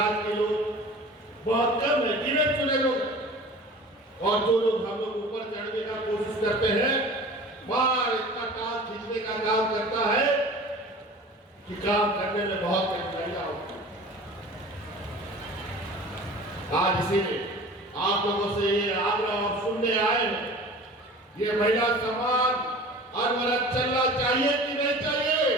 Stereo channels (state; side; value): normal; both; correlation 0.41